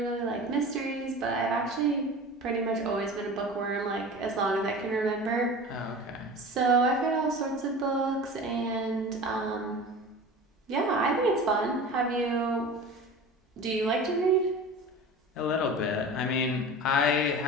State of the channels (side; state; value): both; normal; correlation 0.35